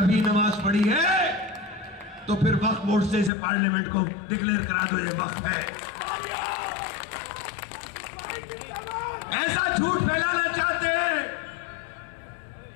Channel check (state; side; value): drops out; right; at 3.3 s